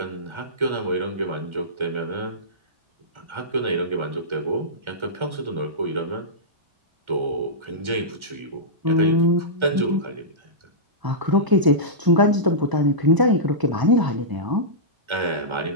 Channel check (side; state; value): left; late; 1.4 ms